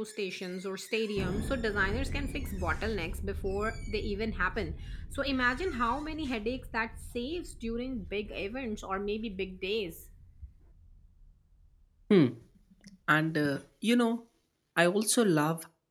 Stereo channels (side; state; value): both; identical; correlation 1.00